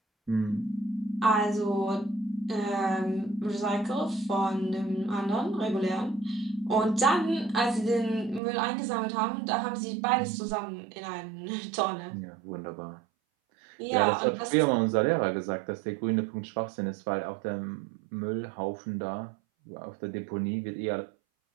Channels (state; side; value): drops out; left; at 8.4 s